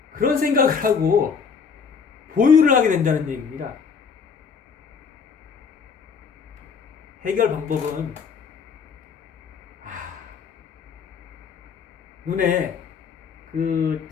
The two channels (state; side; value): quieter; right; 6.0 dB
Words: 그런 생각을 하고 보유를 하게 된다는 얘기입니다. 해결 방법은 눈에 그